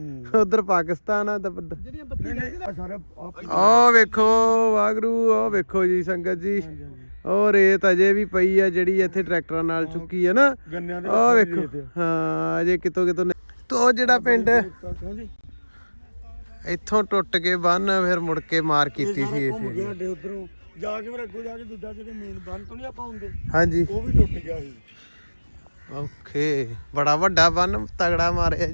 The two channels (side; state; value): both; inverted; correlation -1.00